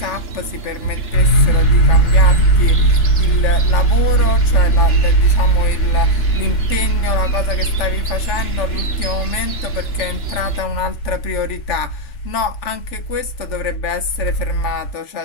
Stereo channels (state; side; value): late; right; 3.4 ms